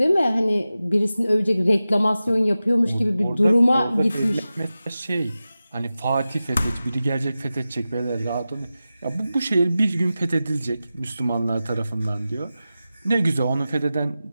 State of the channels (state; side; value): inverted; both; correlation -0.94